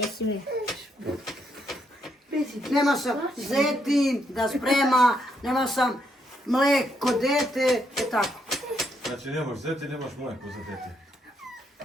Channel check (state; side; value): normal; both; correlation 0.76